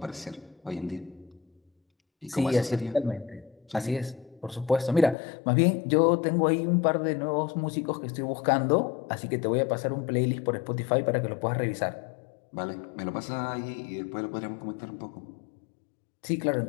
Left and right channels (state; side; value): drops out; right; at 5.2 s